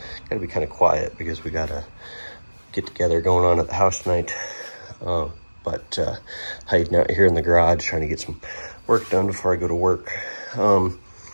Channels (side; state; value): both; inverted; correlation -1.00